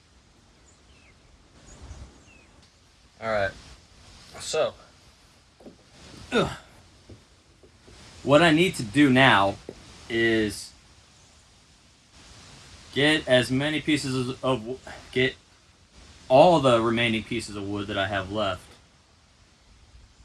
Alright. So what I need to do now is get all the remaining pieces of wood that I have left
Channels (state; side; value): identical; both; correlation 1.00